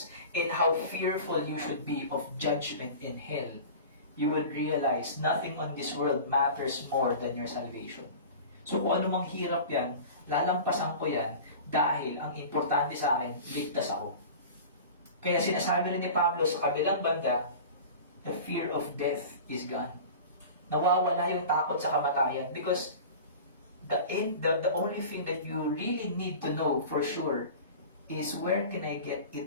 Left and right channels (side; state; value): both; inverted; correlation -0.36